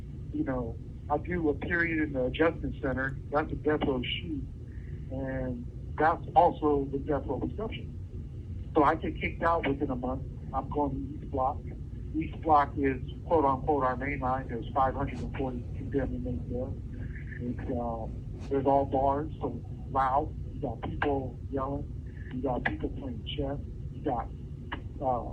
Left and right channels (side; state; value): both; identical; correlation 1.00